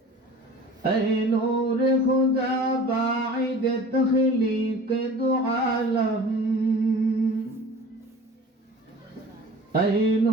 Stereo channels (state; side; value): normal; both; correlation 0.42